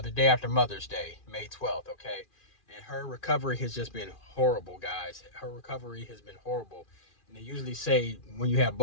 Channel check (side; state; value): right; late; 2.4 ms